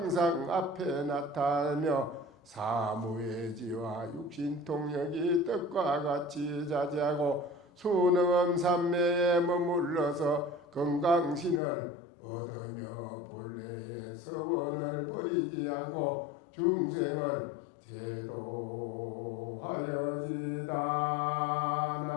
앞에 나타나며 사무예지와 육신통력이 뜻과 같이 자제하고 수능음 삼매에 머물러서 건강신을 얻으며 본래의 서원을 버리지 않고 중생을 제도하여지다.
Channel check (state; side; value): drops out; right; at 11.6 s